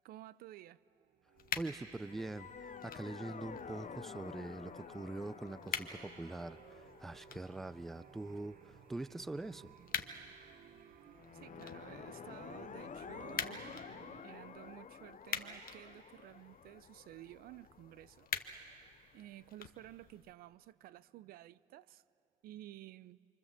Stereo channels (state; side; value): normal; both; correlation 0.44